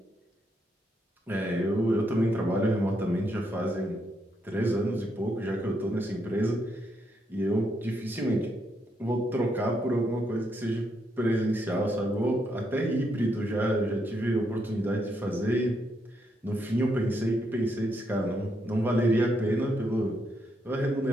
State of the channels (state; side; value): normal; both; correlation 0.78